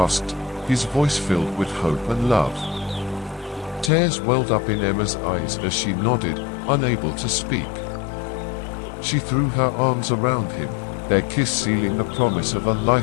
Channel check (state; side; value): drops out; right; at 3.9 s